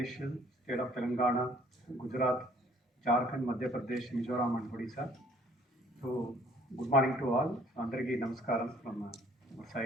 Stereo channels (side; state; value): both; normal; correlation 0.59